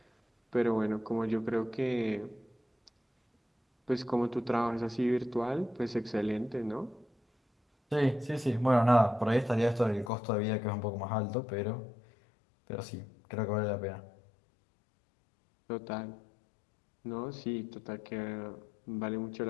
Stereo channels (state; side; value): drops out; right; at 10.1 s